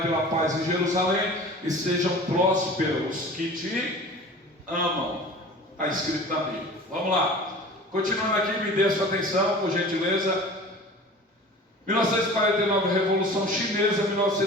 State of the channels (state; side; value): normal; both; correlation 0.40